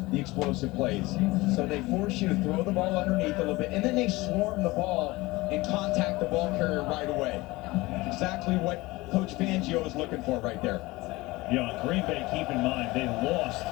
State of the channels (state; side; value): quieter; right; 21.1 dB